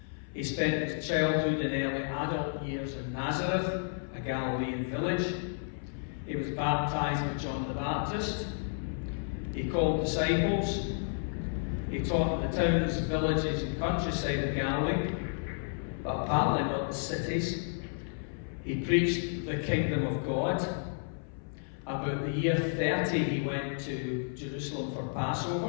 He spent his childhood and early adult years in Nazareth, a Galilean village. He was baptized by John the Baptist. He called disciples. He taught in the towns, villages and countryside of Galilee, but apparently not the cities. He preached the kingdom of God. About the year 30, he went to Jerusalem for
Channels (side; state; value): right; silent; 55 dB below the other